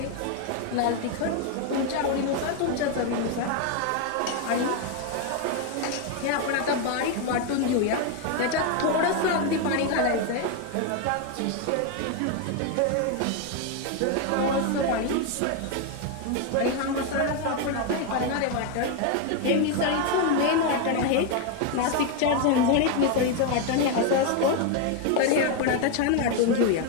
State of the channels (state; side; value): different; both; correlation 0.01